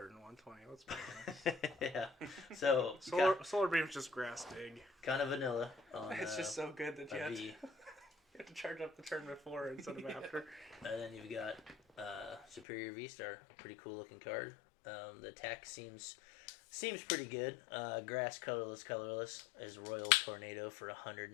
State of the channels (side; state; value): right; drops out; at 12.7 s